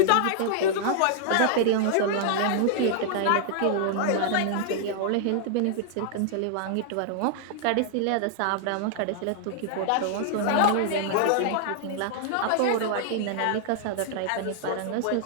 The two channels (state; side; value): different; both; correlation -0.01